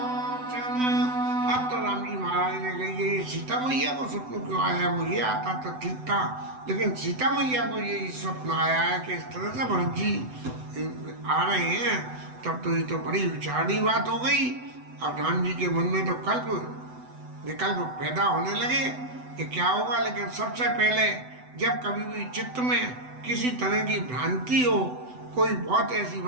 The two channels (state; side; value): late; left; 7.9 ms